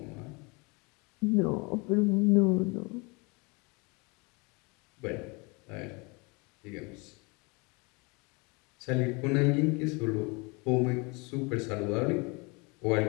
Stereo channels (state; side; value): quieter; right; 28.9 dB